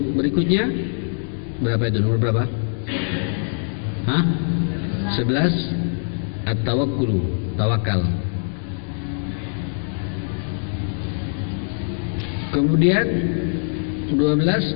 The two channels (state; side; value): silent; right; digital silence